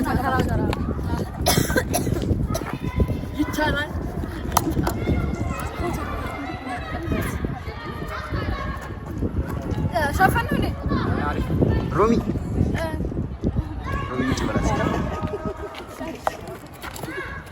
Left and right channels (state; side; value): identical; both; correlation 1.00